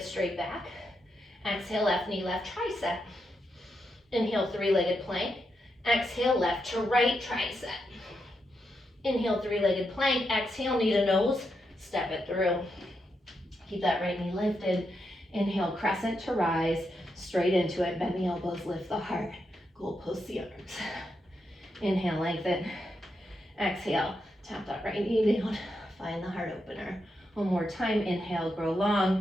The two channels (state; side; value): normal; both; correlation 0.84